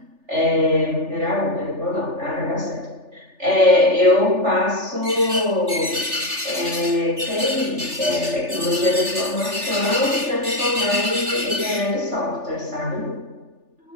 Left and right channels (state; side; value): late; left; 3.4 ms